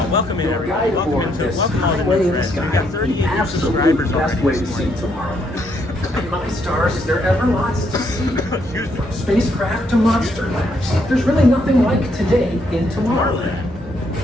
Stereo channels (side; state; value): both; normal; correlation 0.73